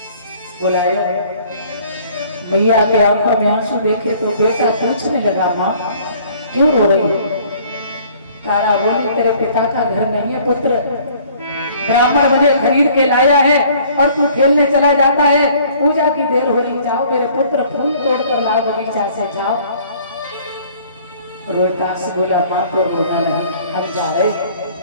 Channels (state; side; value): inverted; both; correlation -0.56